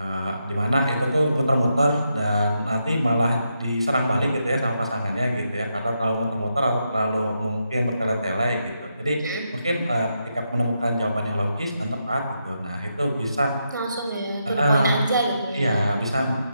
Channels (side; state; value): both; inverted; correlation -0.83